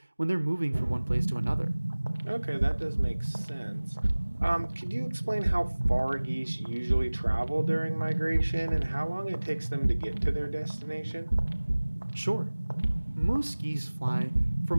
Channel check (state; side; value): inverted; both; correlation -1.00